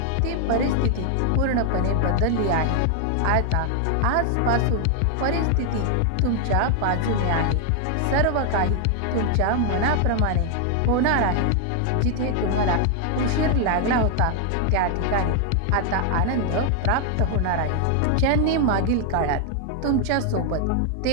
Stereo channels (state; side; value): different; both; correlation 0.00